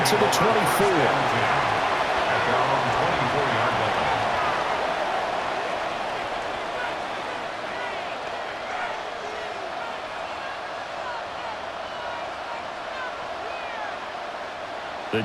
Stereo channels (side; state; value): both; identical; correlation 1.00